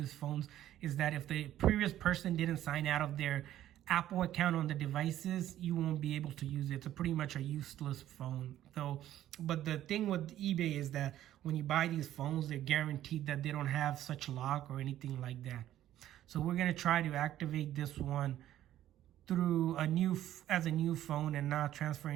phones, is that if the previous person didn't sign out of their Apple account on the devices, you won't be able to use it. It's pretty much a useless phone. So, but the thing with eBay is that when you buy these phones, they're guaranteed that they don't have such lock or anything like that. So we're gonna try to activate this one through as a new phone and not transfer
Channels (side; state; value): left; quieter; 12.6 dB